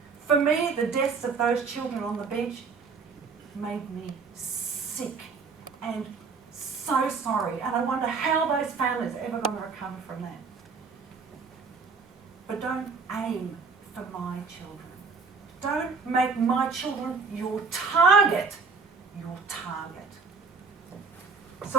For me, the deaths of those children on the beach made me sick and so sorry. And I wonder how those families are ever going to recover from that. But don't aim for my children. Don't make my children your target. Your target.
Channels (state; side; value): quieter; left; 4.8 dB